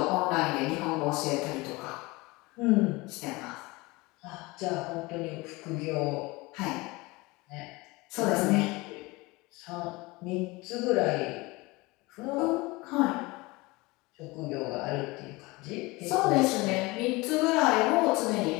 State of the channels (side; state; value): right; quieter; 23.1 dB